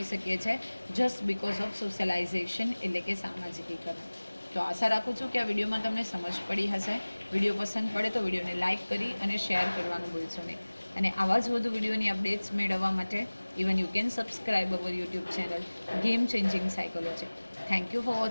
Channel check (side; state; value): both; inverted; correlation -1.00